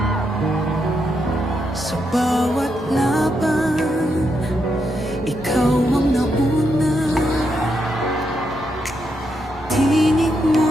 bawat laban, ikaw ang nauna. Tinig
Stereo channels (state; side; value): normal; both; correlation 0.81